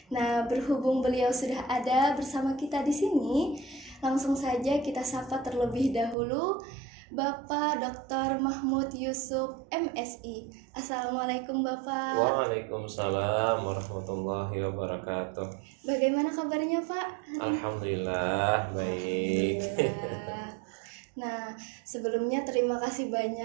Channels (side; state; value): left; drops out; at 6.2 s